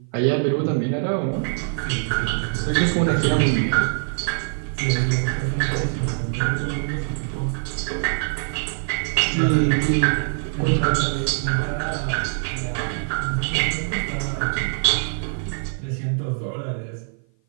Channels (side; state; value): left; silent; 55 dB below the other